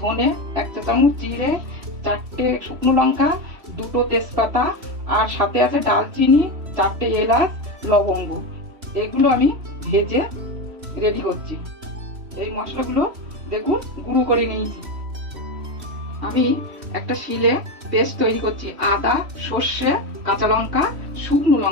ধনে, 1 চা চামচ জিরে, 4টে শুকনো লঙ্কা, 2টো তেজপাতা, আর সাথে আছে ডালচিনি, 4টে এলাচ, লবঙ্গ। এগুলো আমি ভেজে রেডি করছি। এই মশলাগুলো দেখুন গুঁড়ো করে নিয়েছি। আমি একটা শিলে পেস্ট তৈরি করছি। আদা, সর্ষে, কাঁচা লঙ্কা, শুকনো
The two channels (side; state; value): left; late; 3.1 ms